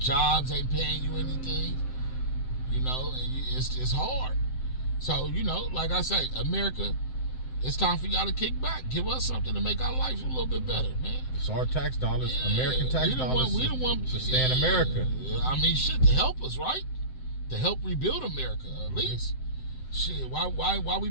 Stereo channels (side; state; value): right; late; 7.8 ms